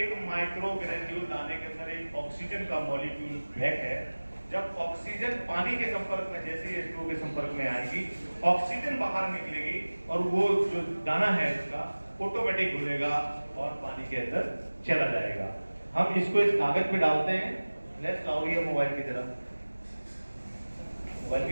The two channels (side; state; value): both; inverted; correlation -1.00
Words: माइक्रो ग्रेन्यूल दाने के अंदर एक ऑक्सीजन का मॉलिक्यूल पैक है। जब ऑक्सीजन पानी के संपर्क में, जैसे ही H2O के संपर्क में आएगी, ऑक्सीजन बाहर निकलेगी और वो जो दाना है इसका ऑटोमेटिक घुलेगा और पानी के अंदर चला जाएगा। हम इसको इस कागज पे डालते हैं। फ्लैश लाओ ये मोबाइल की तरफ, मोबाइल